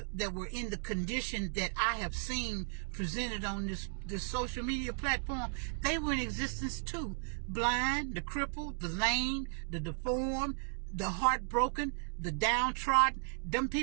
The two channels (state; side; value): silent; left; 54 dB below the other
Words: were in the condition that I have seen presented on this social media platform, they were in existence too. Blind, the crippled, the lame, the deformed, the heartbroken, the downtrodden. Them